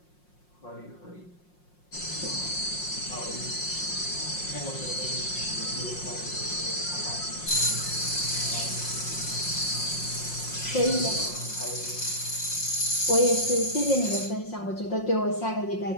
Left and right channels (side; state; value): right; late; 5.6 ms